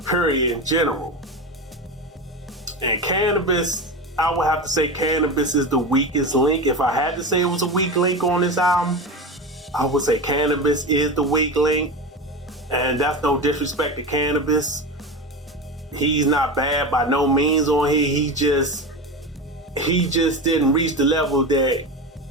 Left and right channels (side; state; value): both; normal; correlation 0.23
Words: period, in general. And Cannabis, I would have to say Cannabis is the weakest link. If I had to say it was a weak link on this album, I would say Cannabis is the weak link. And that's no disrespect to Cannabis, He's not bad by no means on here. He just didn't reach the level that